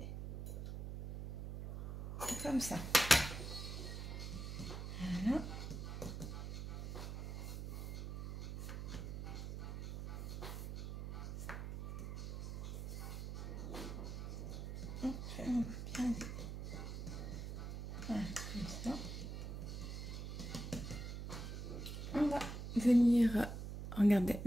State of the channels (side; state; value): right; noise; hum, 6 dB below the sound